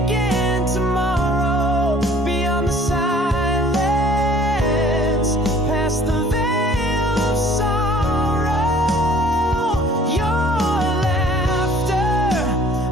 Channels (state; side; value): normal; both; correlation 0.54